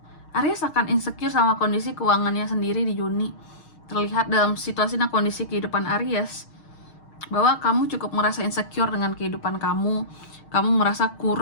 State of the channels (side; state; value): right; late; 6.4 ms